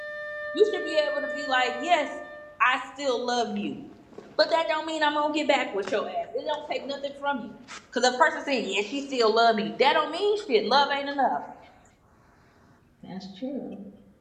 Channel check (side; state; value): both; identical; correlation 1.00